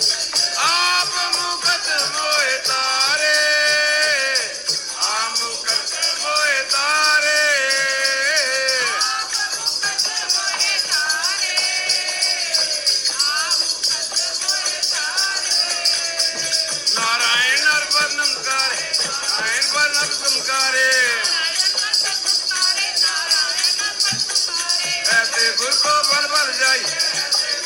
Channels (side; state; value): both; identical; correlation 1.00